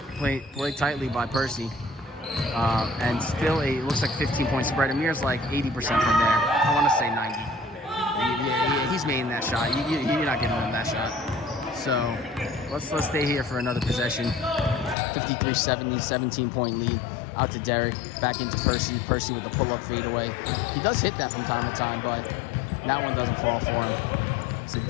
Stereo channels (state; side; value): drops out; right; at 15.0 s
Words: tightly by Percy. And still looks like 15-point spread. Amir's like 80% from there. I want to say 90. Yeah, he's making that shot. You're not giving him that shot. So let's stay here for another possession. 53-70, 17-point lead. Out to Derek, back into Percy. Percy with the pull-up fadeaway. He does hit that from time to time, but that one doesn't fall for him.